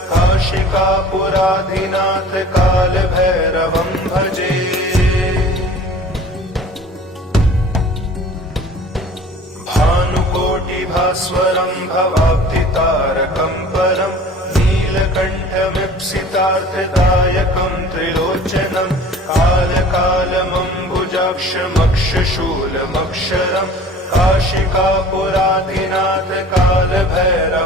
काशिकापुराधिनाथ काल भैरवं भजे। भानुकोटिभास्वरं भवाब्धितारकं परम् नीलकण्ठमीप्सितार्थदायकं त्रिलोचनं कालकालमम्बुजाक्षमक्षशूलमक्षरं काशिकापुराधिनाथ काल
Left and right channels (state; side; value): normal; both; correlation 0.46